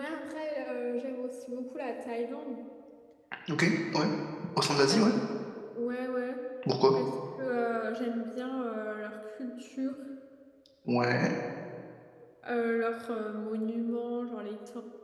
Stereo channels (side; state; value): both; identical; correlation 1.00